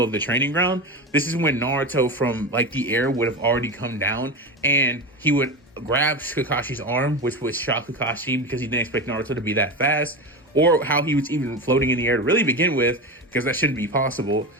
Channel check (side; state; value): both; normal; correlation 0.22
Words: of the training ground. This is when Naruto from like the air would have already come down, and he would grab Kakashi's arm, which would shock Kakashi because he didn't expect Naruto to be that fast, or how he was even floating in the air to really begin with, because that shouldn't be possible.